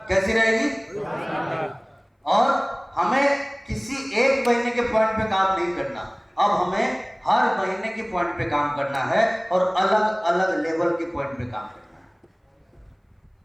कैसी रहेगी? और हमें किसी एक महीने के पॉइंट पे काम नहीं करना, अब हमें हर महीने के पॉइंट पे काम करना है और अलग अलग लेवल के पॉइंट पे काम करना है।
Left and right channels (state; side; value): identical; both; correlation 1.00